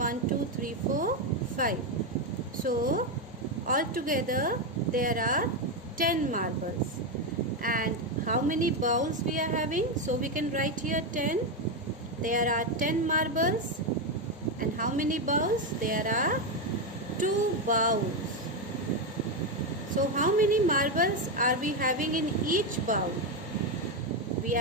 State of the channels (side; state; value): both; normal; correlation 0.07